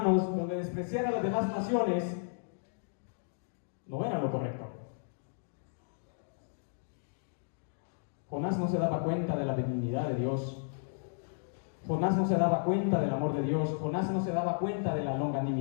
donde despreciar a las demás naciones no era lo correcto. Jonás no se daba cuenta de la benignidad de Dios. Jonás no se daba cuenta del amor de Dios. Jonás no se daba cuenta de la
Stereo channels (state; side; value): silent; right; digital silence